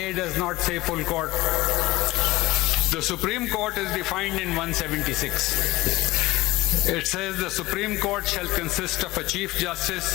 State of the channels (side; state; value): right; quieter; 19.2 dB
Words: does not say full court. The Supreme Court is defined in 176. It says the Supreme Court shall consist of a Chief Justice